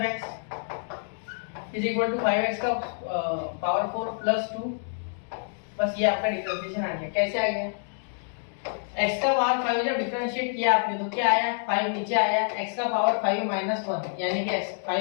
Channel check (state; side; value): silent; right; digital silence